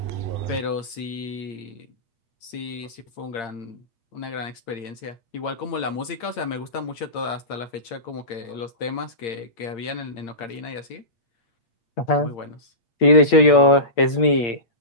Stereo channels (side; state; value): right; late; 8.7 ms